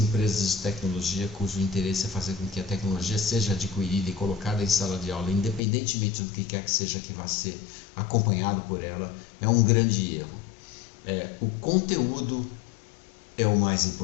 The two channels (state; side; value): drops out; right; at 5.6 s